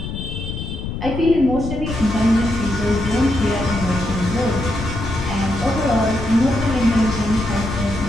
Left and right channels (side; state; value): left; noise; rumble, 6 dB below the sound